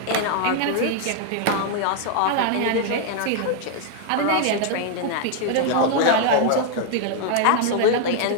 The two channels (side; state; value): both; different; correlation 0.00